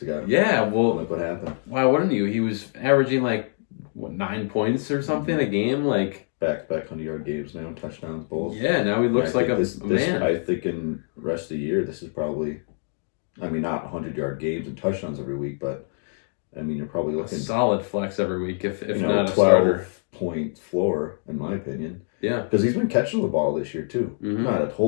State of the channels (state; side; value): silent; right; digital silence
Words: ago. Yeah, well. Look what happened. Why wouldn't you? He was averaging like, what, 9 points or something a game? Like. Back 100-yard games now, touchdowns both. Yeah, now he looks like a man. I think in the rest of the year, this is probably, I mean, not 100-yard games and touchdowns every week, but I mean, you're probably looking a solid flex every week, if not a 12-point floor, in my opinion. Yeah, because he's been catching the ball this year too. Not a